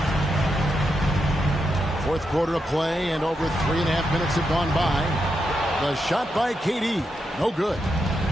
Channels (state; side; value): normal; both; correlation 0.84